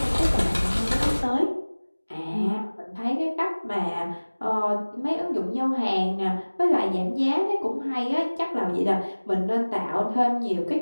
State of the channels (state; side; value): inverted; both; correlation -1.00